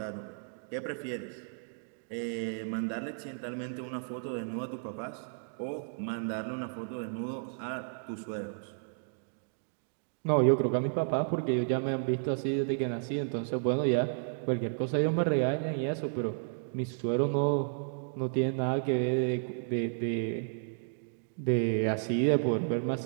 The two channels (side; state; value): left; silent; digital silence